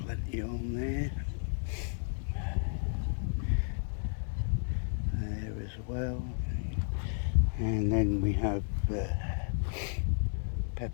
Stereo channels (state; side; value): silent; right; digital silence